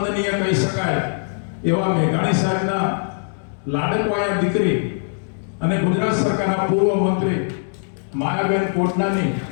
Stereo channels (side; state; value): right; silent; digital silence